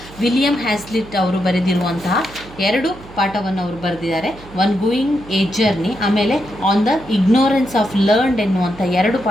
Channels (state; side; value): noise; right; hum, 19 dB below the sound